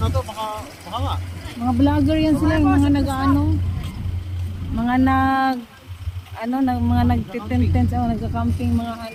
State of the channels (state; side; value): identical; both; correlation 1.00